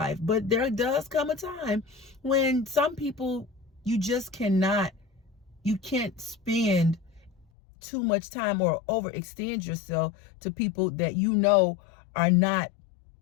But there does come a time when some people, you just cannot, you can't spend too much time or overextend yourself to people that you know are not,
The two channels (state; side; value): drops out; right; at 7.5 s